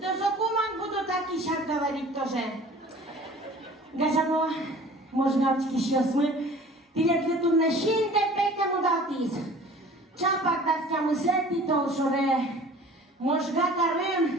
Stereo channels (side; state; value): both; normal; correlation 0.46